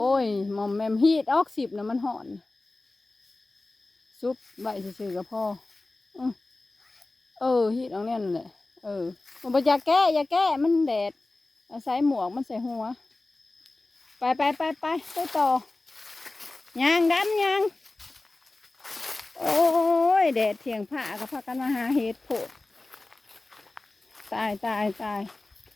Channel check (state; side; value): quieter; right; 3.1 dB